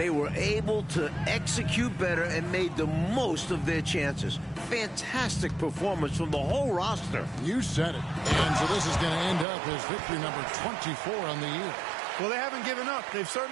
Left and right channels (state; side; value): drops out; left; at 9.5 s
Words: were able to execute better and made the most of their chances. Fantastic performance from the whole roster. You said it. And so this is going to end up as victory number 24 on the year. Well, they haven't given up. They've